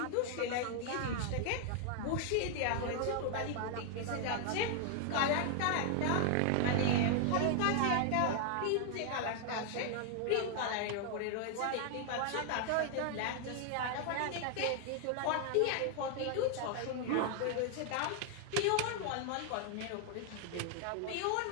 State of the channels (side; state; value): both; different; correlation 0.00